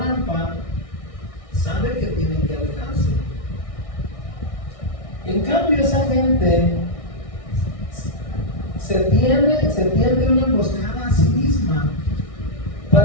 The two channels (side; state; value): right; late; 1.6 ms